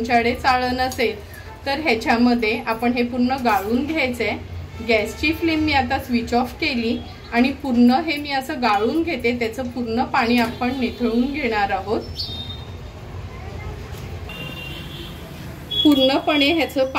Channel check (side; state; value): both; identical; correlation 1.00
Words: चाळण असेल तर ह्याच्यामध्ये आपण हे पूर्ण गाळून घ्यायचंय. गॅसची फ्लेम मी आता स्विच ऑफ केली आणि पूर्ण हे मी असं गाळून घेते. त्याचं पूर्ण पाणी आपण निथळून घेणार आहोत. पूर्णपणे ह्याचं